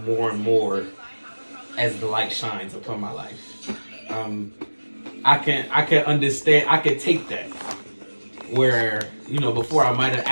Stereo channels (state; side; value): inverted; both; correlation -1.00